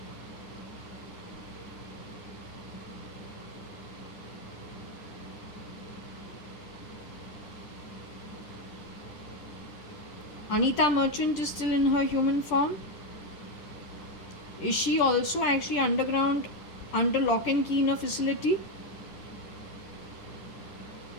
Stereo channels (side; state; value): right; late; 10 ms